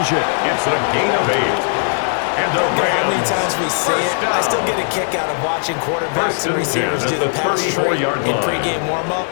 It's a gain of 8. And the Rams, how many times we see it, I still get a kick out of watching quarterbacks and receivers do the pass tree in pregame warm-up.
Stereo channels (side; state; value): right; silent; digital silence